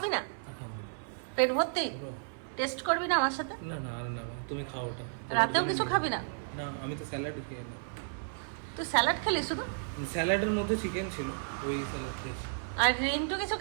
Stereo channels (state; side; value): silent; left; 56 dB below the other